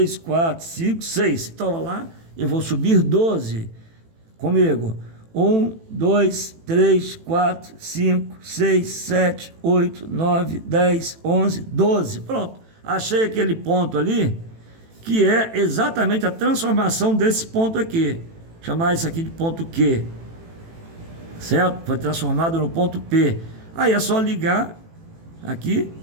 4, 5, 6. Então, lá, eu vou subir 12. Comigo. 1, 2, 3, 4, 5, 6, 7, 8, 9, 10, 11, 12. Pronto. Achei aquele ponto ali, que é exatamente a transformação desse ponto aqui. Chamar isso aqui de ponto Q. Certo? Foi transformado no ponto P. Aí é só ligar aqui,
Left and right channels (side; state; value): left; late; 18 ms